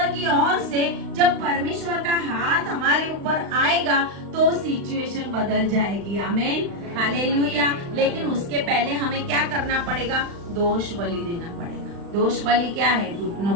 की ओर से जब परमेश्वर का हाथ हमारे ऊपर आएगा तो सिचुएशन बदल जाएगी। आमीन, हालेलुया। लेकिन उसके पहले हमें क्या करना पड़ेगा? दोष बलि देना पड़ेगा। दोष बलि क्या है? घुटनों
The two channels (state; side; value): late; left; 35 ms